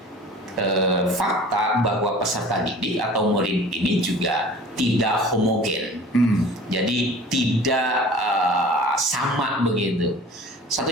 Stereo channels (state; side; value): normal; both; correlation 0.43